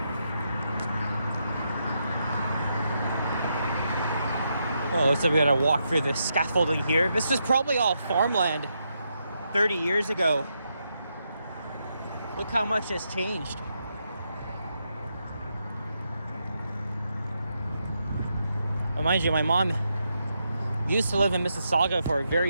Oh, looks like we gotta walk through the scaffolding here. This was probably all farmland 30 years ago. Look how much has changed. Well, mind you, my mom used to live in Mississauga for a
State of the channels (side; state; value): both; inverted; correlation -0.82